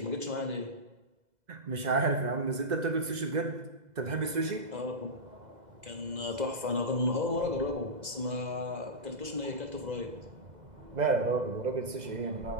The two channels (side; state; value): left; late; 2.0 ms